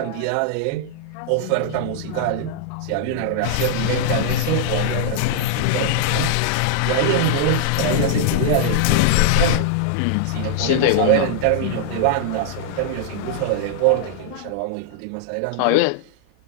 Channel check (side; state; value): both; different; correlation -0.01